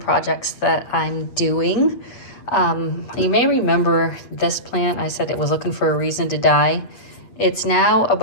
that I'm doing. You may remember this plant. I said it was looking for a reason to die. It's now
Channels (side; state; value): right; late; 8.5 ms